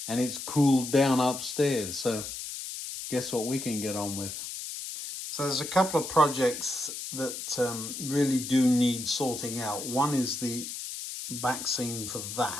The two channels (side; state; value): left; noise; hiss, 7 dB below the sound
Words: and it's cooled down upstairs. So guess what we can get on with? So there's a couple of projects that really do need sorting out. One is the back scene for